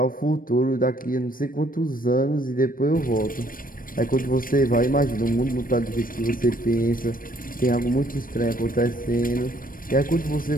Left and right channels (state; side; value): late; right; 0.41 ms